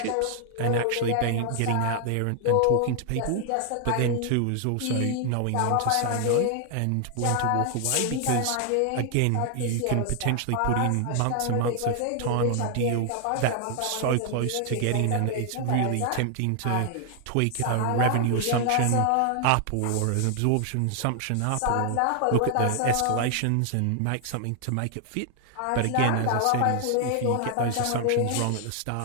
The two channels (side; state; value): both; different; correlation 0.00